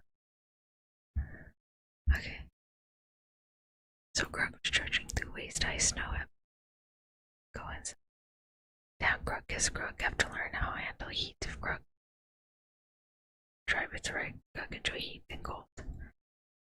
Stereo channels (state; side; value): identical; both; correlation 1.00